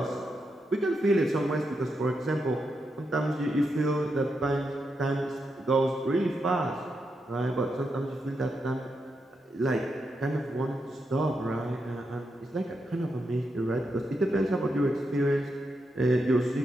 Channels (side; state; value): both; normal; correlation 0.84